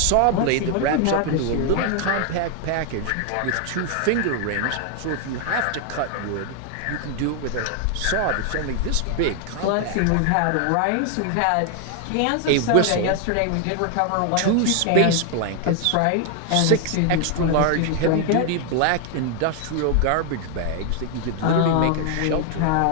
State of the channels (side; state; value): both; different; correlation 0.00